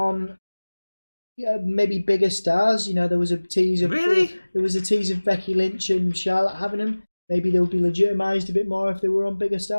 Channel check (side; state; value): both; inverted; correlation -1.00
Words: maybe bigger stars. There was a tease of Becky Lynch and Charlotte having them. Maybe they would be legitimised a bit more if they were on bigger